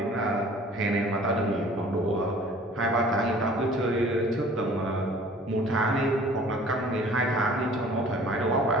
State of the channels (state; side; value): normal; both; correlation 0.49